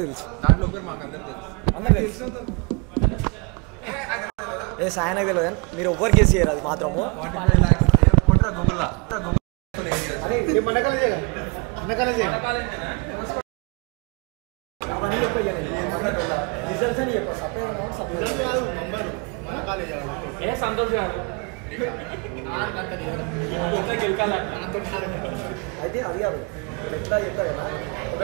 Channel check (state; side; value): quieter; left; 31.3 dB